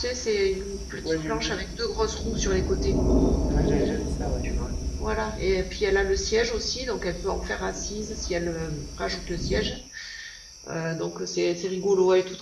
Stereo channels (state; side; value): identical; both; correlation 1.00